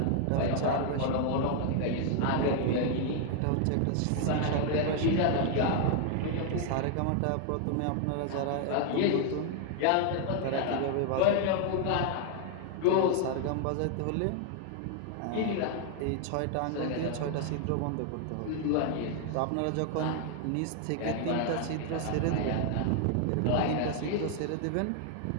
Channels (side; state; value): both; different; correlation 0.00